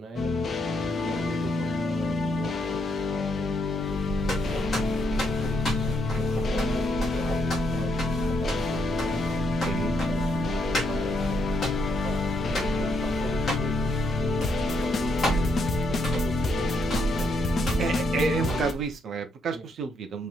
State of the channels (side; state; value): both; normal; correlation 0.76